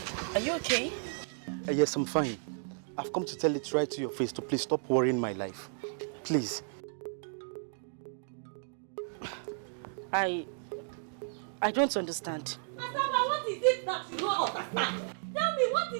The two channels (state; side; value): silent; left; digital silence